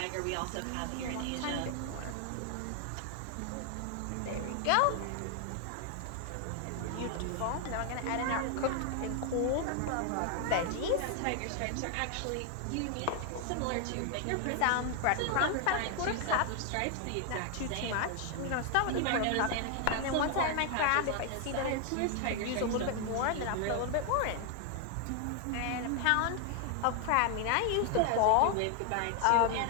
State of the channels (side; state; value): both; different; correlation 0.00